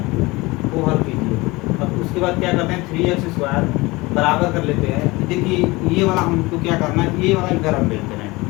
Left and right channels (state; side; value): quieter; right; 22.3 dB